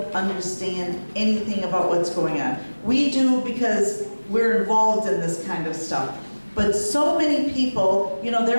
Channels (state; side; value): inverted; both; correlation -1.00